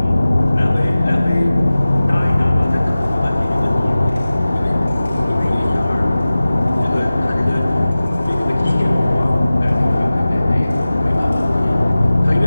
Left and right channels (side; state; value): both; inverted; correlation -0.97